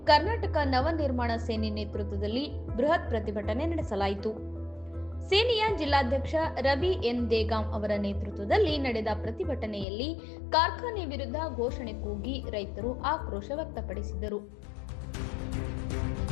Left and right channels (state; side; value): drops out; right; at 9.9 s